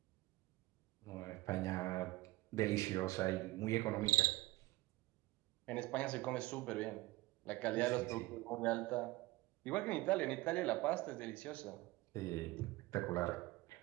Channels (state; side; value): quieter; left; 19.6 dB